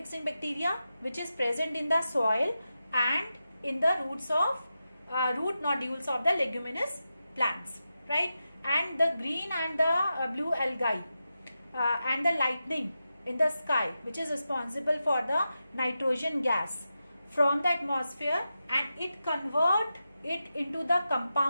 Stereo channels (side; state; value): both; inverted; correlation -0.90